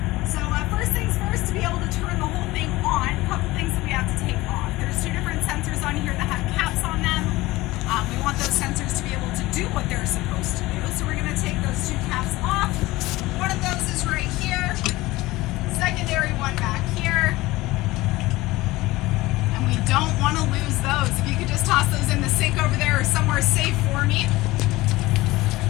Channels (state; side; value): quieter; right; 19.3 dB